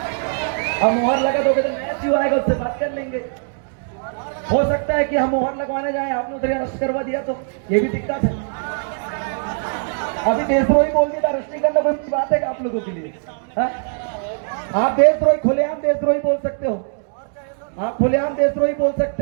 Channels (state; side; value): silent; left; digital silence